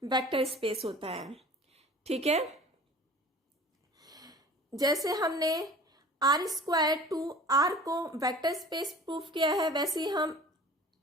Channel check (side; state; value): both; normal; correlation 0.44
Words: वेक्टर स्पेस होता है, ठीक है। जैसे हमने r स्क्वायर टू r को वेक्टर स्पेस प्रूफ किया है, वैसे ही हम